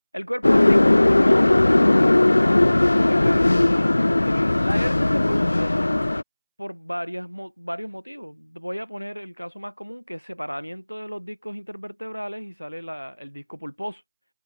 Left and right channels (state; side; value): inverted; both; correlation -1.00